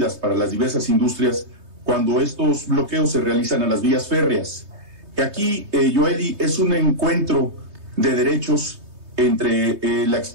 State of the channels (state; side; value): late; left; 3.2 ms